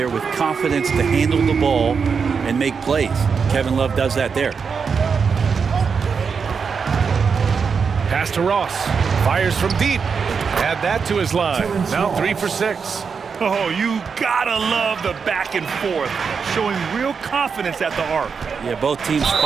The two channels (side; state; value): left; quieter; 5.8 dB